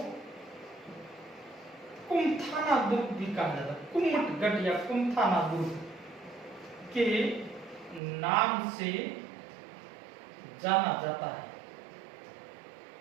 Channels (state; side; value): drops out; left; at 8.0 s